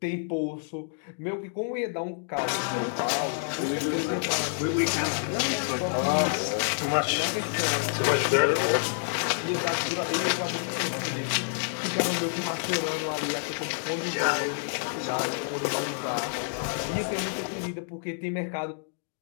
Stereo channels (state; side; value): silent; right; digital silence